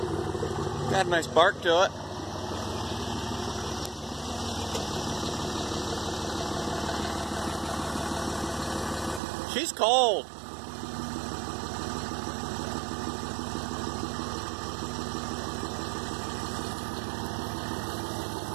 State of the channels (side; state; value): left; drops out; at 9.2 s